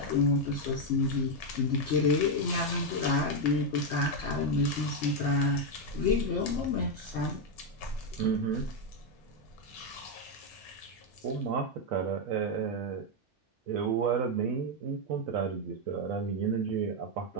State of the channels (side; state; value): both; normal; correlation 0.03